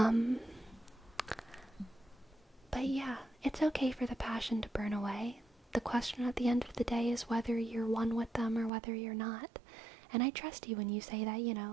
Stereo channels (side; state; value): left; drops out; at 8.7 s